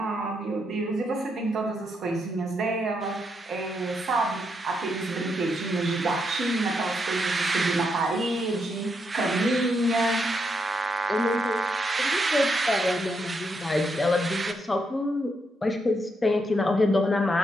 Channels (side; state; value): both; normal; correlation 0.80